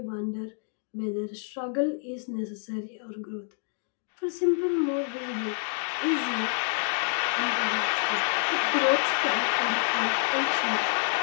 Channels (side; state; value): right; silent; 55 dB below the other